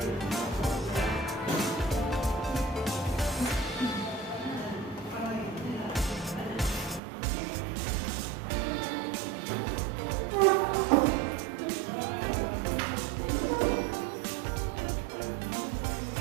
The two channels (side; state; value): left; drops out; at 7.0 s